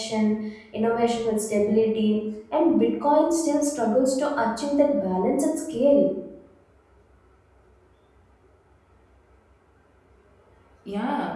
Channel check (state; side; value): identical; both; correlation 1.00